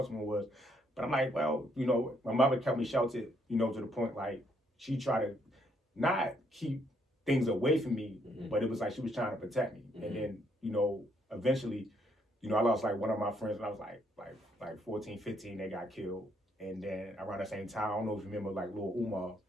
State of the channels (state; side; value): normal; both; correlation 0.71